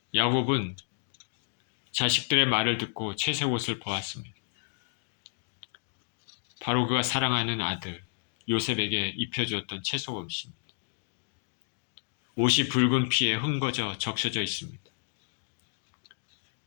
야곱은 자식들의 말을 듣고 채색 옷을 보았습니다. 바로 그가 사랑하는 아들 요셉에게 입혀주었던 채색 옷입니다. 옷이 붉은 피에 흠거져 적셔져 있습니다.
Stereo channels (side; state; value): right; silent; digital silence